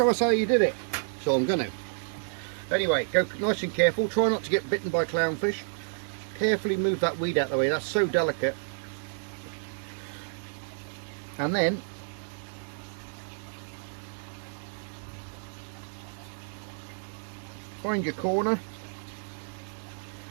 us how you did it. So I'm going to. Anyway, go nice and careful, try not to get bitten by clownfish. Carefully move that weed out of the way, that's so delicate. And then find your corner.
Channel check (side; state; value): left; silent; digital silence